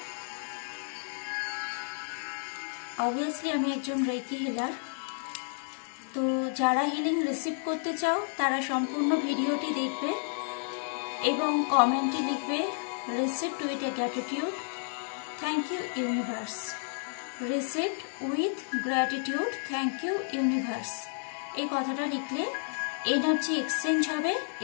অবভিয়াসলি আমি একজন রেকি হিলার, তো যারা হিলিং রিসিভ করতে চাও তারা সম্পূর্ণ ভিডিওটি দেখবে এবং কমেন্টে লিখবে received with a gratitude, thank you universe. Received with gratitude, thank you universe. এই কথাটা লিখলে এনার্জি এক্সচেঞ্জ হবে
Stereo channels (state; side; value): silent; right; 57 dB below the other